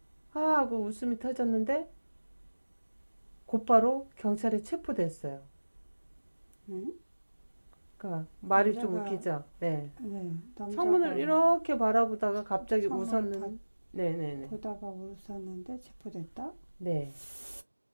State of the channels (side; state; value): both; inverted; correlation -1.00